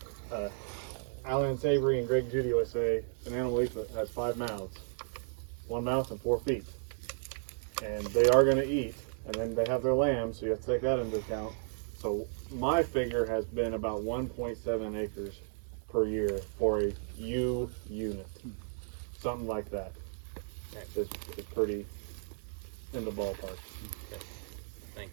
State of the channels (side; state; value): left; silent; digital silence